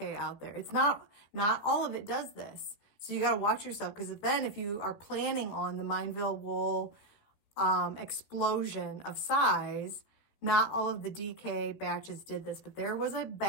out there. It's not all of it does this. So you got to watch yourself, because then if you are planning on the Mineville wool explosion of size, not all of the DK batches did this, but there was a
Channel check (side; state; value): right; late; 14 ms